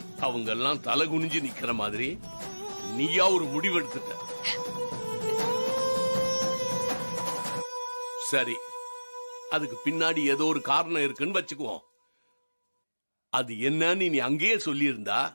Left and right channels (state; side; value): inverted; both; correlation -1.00